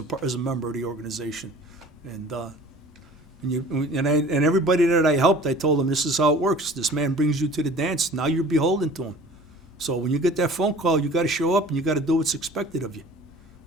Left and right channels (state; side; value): normal; both; correlation 0.45